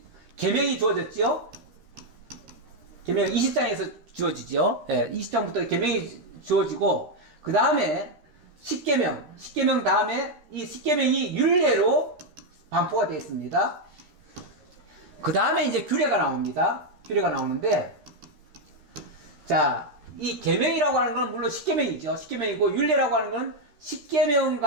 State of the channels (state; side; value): late; left; 13 ms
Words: 계명이 주어졌죠. 계명 20장에서 주어지죠. 20장부터 계명이 주어지고 그 다음에 10계명 다음에 이 10계명이 율례로 반포가 되어 있습니다. 그 다음에 이제 규례가 나옵니다. 규례가 나오는데, 자, 이 계명이라고 하는 건 물론 10계명이죠. 10계명이고 율례라고 하는 건 10계명